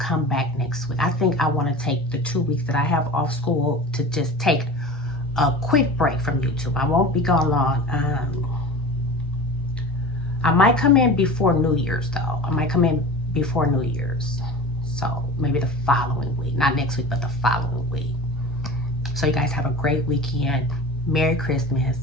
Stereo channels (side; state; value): both; normal; correlation 0.35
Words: back next week. I think I want to take the 2 weeks that I have off school to just take a quick break from YouTube. I won't be gone long. I might come in before New Year's though. I might come in before New Year's. So maybe the following week. Not next week, but the following week. So you guys have a great weekend. Merry Christmas,